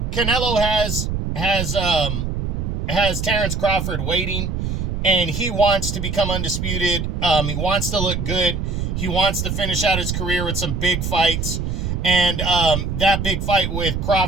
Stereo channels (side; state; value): right; noise; rumble, 2 dB below the sound